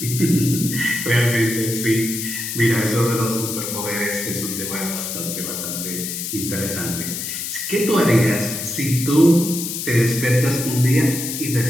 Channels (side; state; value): left; noise; hiss, 5 dB below the sound